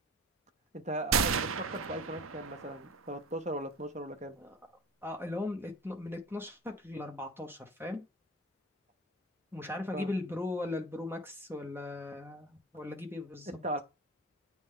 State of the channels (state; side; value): normal; both; correlation 0.37